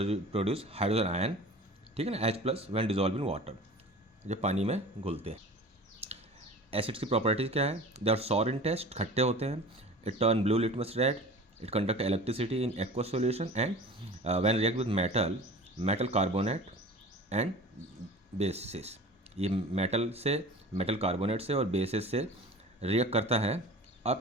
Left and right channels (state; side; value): normal; both; correlation 0.39